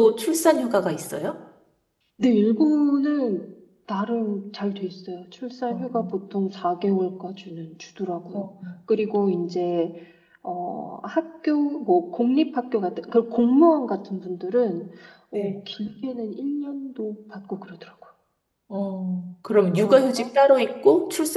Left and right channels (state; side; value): identical; both; correlation 1.00